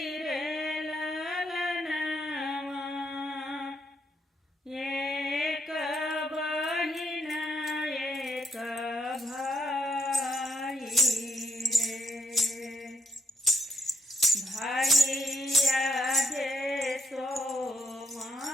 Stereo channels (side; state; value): both; normal; correlation 0.75